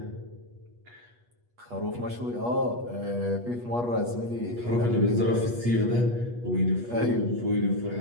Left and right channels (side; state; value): left; late; 8.3 ms